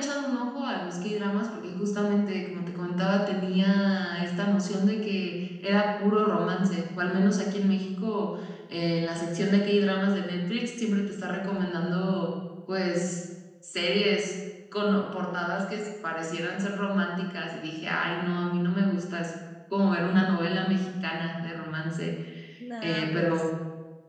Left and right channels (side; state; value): both; identical; correlation 1.00